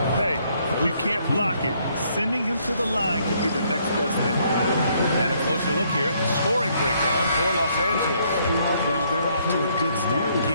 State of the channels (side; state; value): both; inverted; correlation -0.69